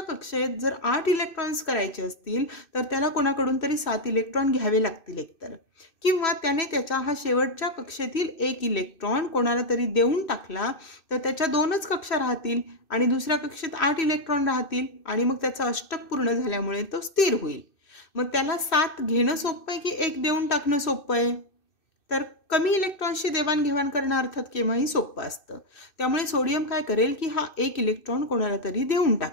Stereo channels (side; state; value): right; late; 2.6 ms